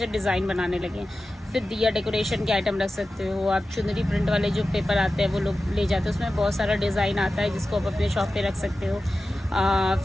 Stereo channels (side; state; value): both; normal; correlation 0.94